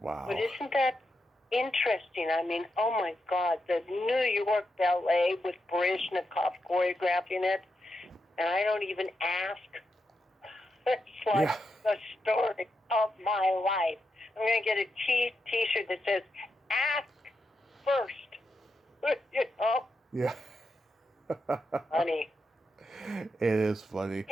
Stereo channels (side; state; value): both; normal; correlation 0.85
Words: But isn't that interesting? I mean, oh my God, the New York Ballet with Baryshnikov choreographing it, and I don't even ask. It's like the story of my life. I'm going to get a T-shirt that says, ask first. You know? Yeah. Funny. It is funny.